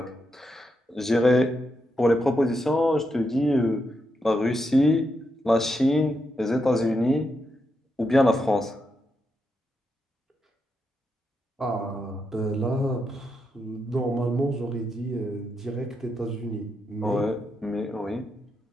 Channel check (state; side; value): normal; both; correlation 0.83